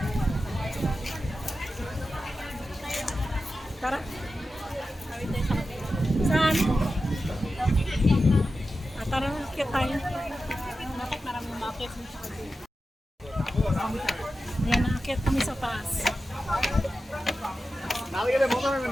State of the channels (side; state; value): both; normal; correlation 0.92